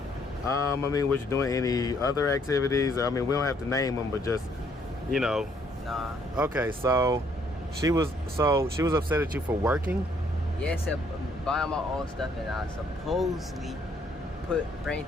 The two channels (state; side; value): normal; both; correlation 0.67